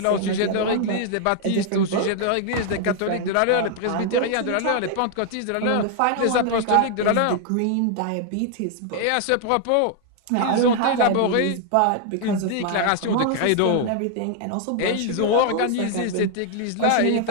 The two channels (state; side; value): different; both; correlation 0.00